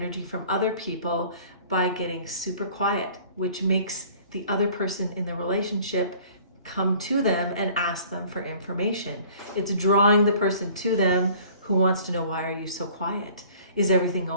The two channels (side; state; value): both; inverted; correlation -0.51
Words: from other people by getting super quiet, which makes the other person in the relationship come to them and ask them for information. It's drawing the person to them who wants to know, why are you so quiet? Is everything